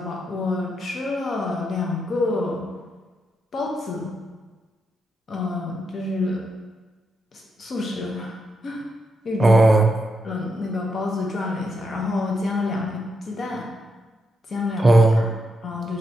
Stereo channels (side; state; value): both; normal; correlation 0.82